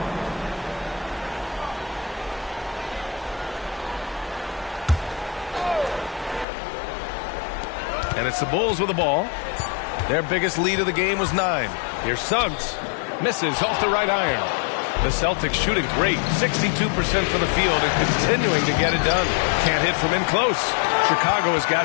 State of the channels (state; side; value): drops out; right; at 6.5 s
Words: And it's the Bulls with the ball. Their biggest lead of the game was 9. Here's Suggs. Misses off the right iron. The Celtics shooting great. 62% from the field and continuing to get it done. Can't hit from in close. Chicago has